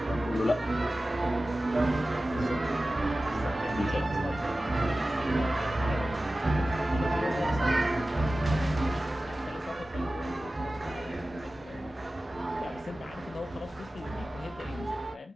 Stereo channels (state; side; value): normal; both; correlation 0.96